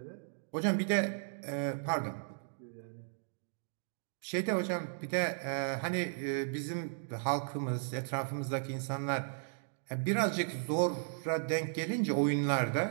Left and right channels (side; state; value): left; silent; digital silence